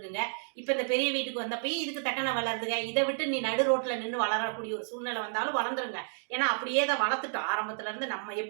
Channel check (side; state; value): left; silent; digital silence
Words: இப்ப இந்த பெரிய வீட்டுக்கு வந்தப்பயும் இதுக்கு தக்கன வளருதுங்க. இதை விட்டு நீ நடு ரோட்ல நின்று வளரக்கூடிய ஒரு சூழ்நிலை வந்தாலும் வளர்ந்துருங்க. ஏன்னா அப்படியே தான் வளர்த்துட்டோம் ஆரம்பத்துல இருந்து. நம்ம